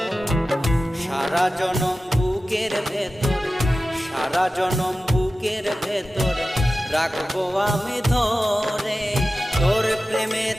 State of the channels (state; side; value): normal; both; correlation 0.95